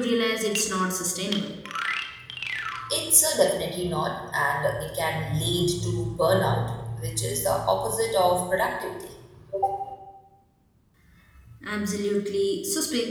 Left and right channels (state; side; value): identical; both; correlation 1.00